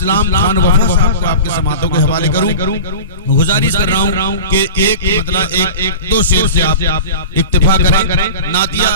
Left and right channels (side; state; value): both; inverted; correlation -0.32